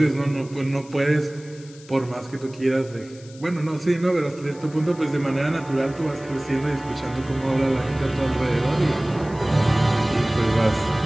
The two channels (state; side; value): noise; left; hiss, 23 dB below the sound